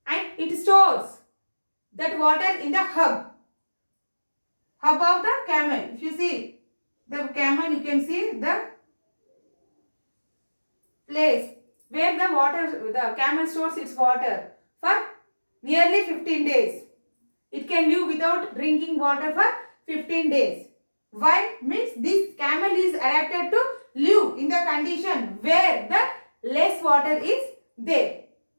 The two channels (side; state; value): both; inverted; correlation -1.00